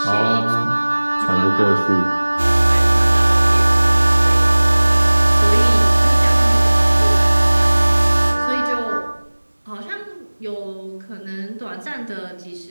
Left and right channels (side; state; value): both; inverted; correlation -1.00